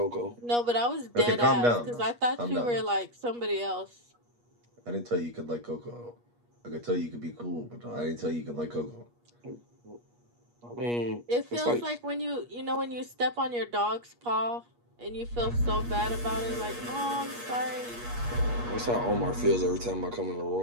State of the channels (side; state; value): left; late; 8.4 ms